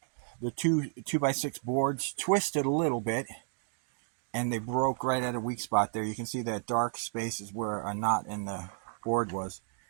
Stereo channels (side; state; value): left; silent; 56 dB below the other